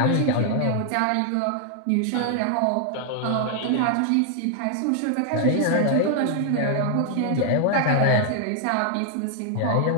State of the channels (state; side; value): different; both; correlation 0.00